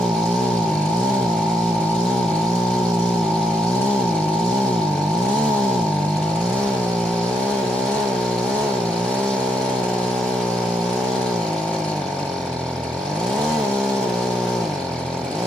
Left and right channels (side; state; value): both; normal; correlation 0.79